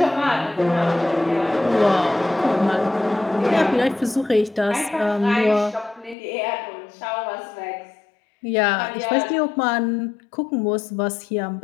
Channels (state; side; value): drops out; right; at 6.2 s